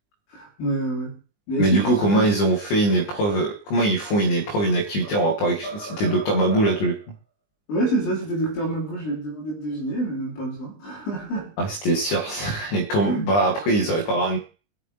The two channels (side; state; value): right; late; 20 ms